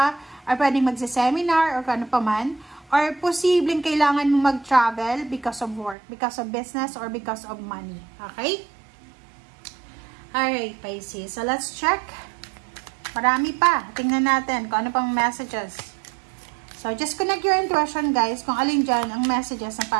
or pwedeng magsa-seminar or kano pa man. Or posibleng kailangan mo mag-travel because of work, because of business, or because of money. Okay? Alright, Pisces. So let's check. Marami pa. Tingnan natin kung ano pang messages. So, just connect your intuition, guys, kung alin dyan ang messages na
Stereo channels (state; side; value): drops out; left; at 6.0 s